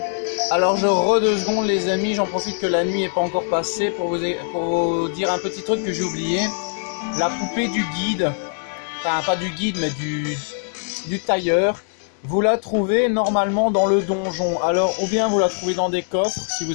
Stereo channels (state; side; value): silent; right; digital silence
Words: Alors je re 2 secondes, les amis, j'en profite que la nuit n'est pas encore passée pour vous dire un petit truc que j'ai oublié. La poupée du guide, enfin pas du guide mais du tailleur. Vous la trouvez normalement dans le donjon. Alors, ou bien vous la trouvez dans des coffres, si